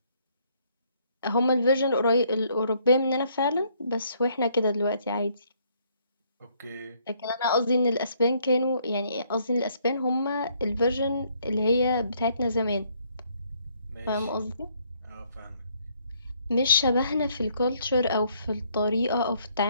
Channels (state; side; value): inverted; both; correlation -0.68